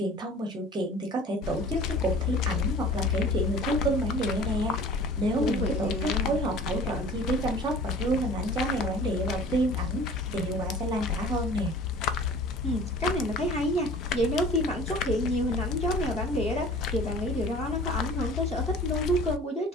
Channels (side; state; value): both; normal; correlation 0.45